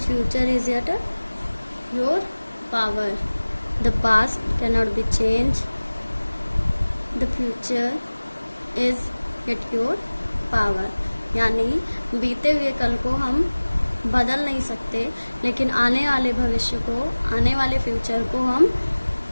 is yet your power. The past cannot be changed. The future is yet your power. यानी बीते हुए कल को हम बदल नहीं सकते, लेकिन आने वाले भविष्य को, आने वाले फ्यूचर को हम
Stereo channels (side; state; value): both; inverted; correlation -1.00